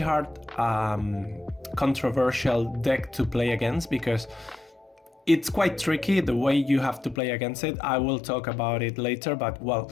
controversial deck to play against because it's quite tricky the way you have to play against it. I will talk about it later, but well,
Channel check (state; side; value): drops out; right; at 7.2 s